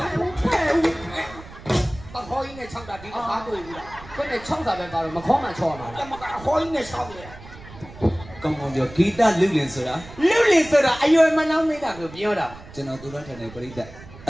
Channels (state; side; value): noise; right; rumble, 18 dB below the sound